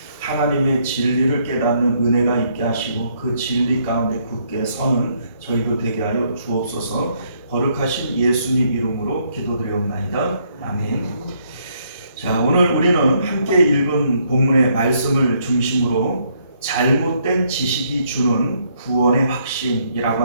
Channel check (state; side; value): inverted; both; correlation -0.71